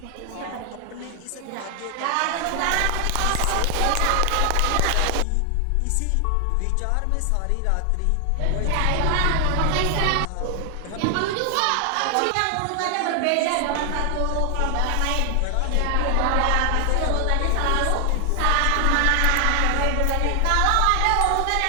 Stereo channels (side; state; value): both; different; correlation 0.00